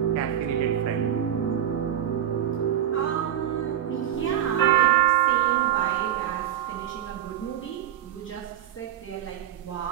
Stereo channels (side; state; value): left; quieter; 10.8 dB